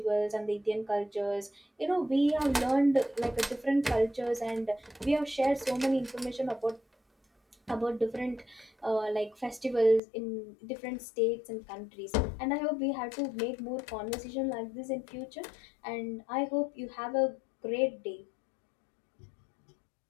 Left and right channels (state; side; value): drops out; right; at 10.0 s